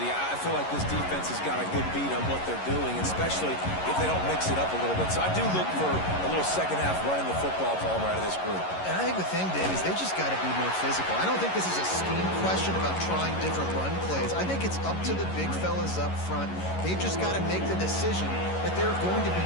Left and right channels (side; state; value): right; late; 11 ms